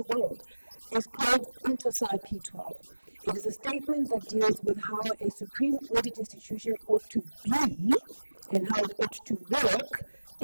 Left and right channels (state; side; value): inverted; both; correlation -1.00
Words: world is called Oversight P12. It is a statement that deals with how a supreme audit institution ought to be and how it ought to work